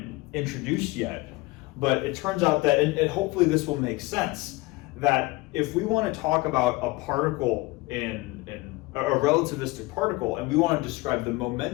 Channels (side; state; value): right; quieter; 22.0 dB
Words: introduced yet, but it turns out that, and hopefully this will make sense, that if we want to talk about a particle in a relativistic particle, and we want to describe the